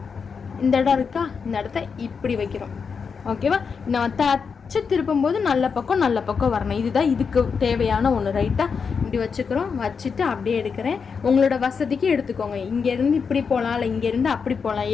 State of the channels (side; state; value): right; quieter; 5.8 dB